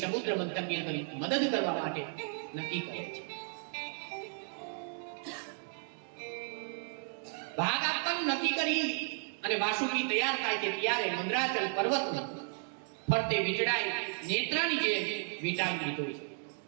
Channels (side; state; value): left; silent; 55 dB below the other